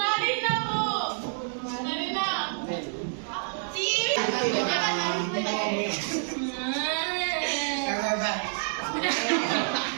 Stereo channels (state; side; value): silent; left; 59 dB below the other